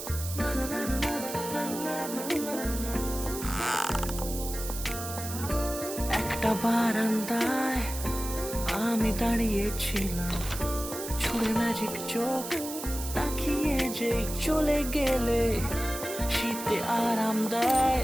একটা বারান্দায় আমি দাঁড়িয়েছিলাম, ছুড়ে ম্যাজিক চোখ তাকিয়ে যে চলে গেলে শীতে আরাম দেয়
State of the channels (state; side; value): noise; right; hiss, 8 dB below the sound